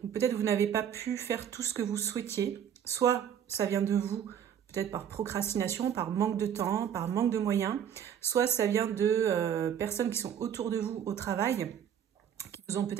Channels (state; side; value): quieter; left; 9.0 dB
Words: peut-être vous n'avez pas pu faire tout ce que vous souhaitiez, soit ça vient de vous, peut-être par procrastination, par manque de temps, par manque de moyens, soit ça vient de personnes qui sont autour de vous au travail, qui vous ont